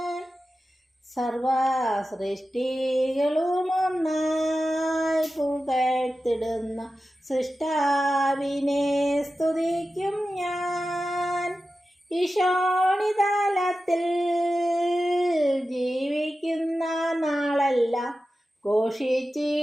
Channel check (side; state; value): both; normal; correlation 0.93